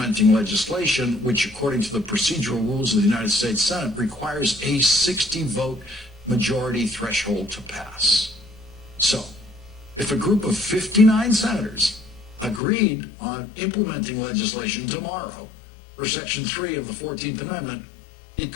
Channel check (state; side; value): drops out; right; at 12.6 s